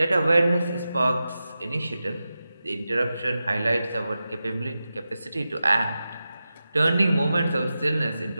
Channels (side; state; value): both; inverted; correlation -0.92